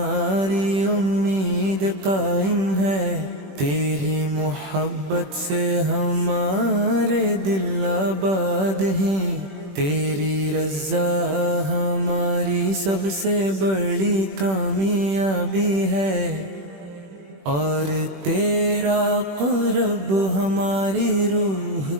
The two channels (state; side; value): late; left; 21 ms